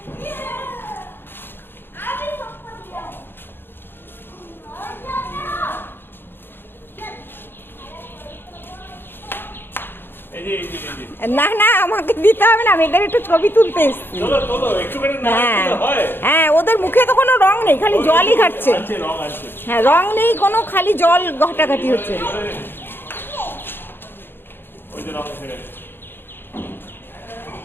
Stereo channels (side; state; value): right; late; 0.10 ms